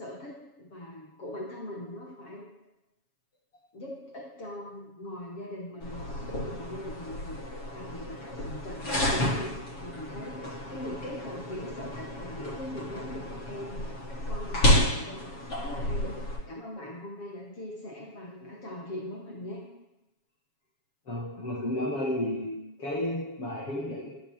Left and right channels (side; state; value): right; late; 7.2 ms